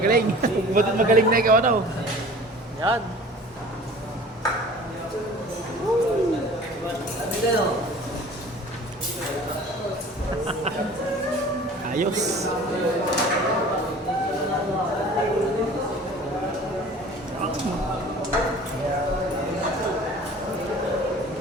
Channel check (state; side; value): normal; both; correlation 0.44